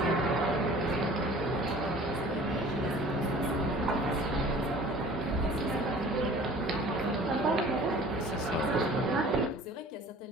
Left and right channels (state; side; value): normal; both; correlation 0.47